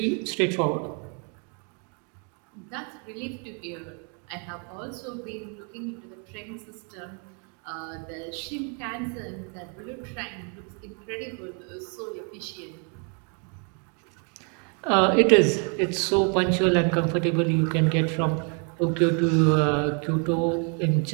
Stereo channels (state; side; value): quieter; left; 38.5 dB